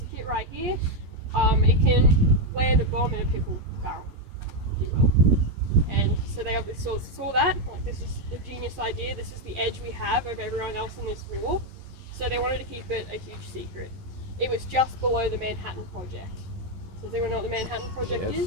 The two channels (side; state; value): left; late; 11 ms